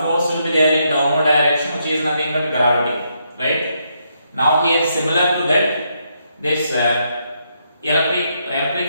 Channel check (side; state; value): both; inverted; correlation -0.78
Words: will be there in downward direction, which is nothing but gravity, right? Now here similar to that, this